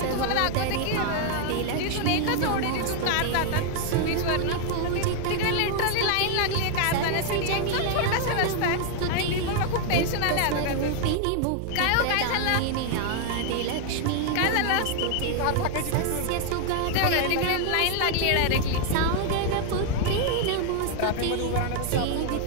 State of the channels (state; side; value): different; both; correlation 0.00